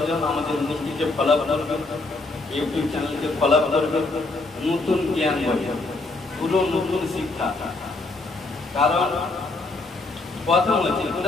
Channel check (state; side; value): quieter; right; 3.2 dB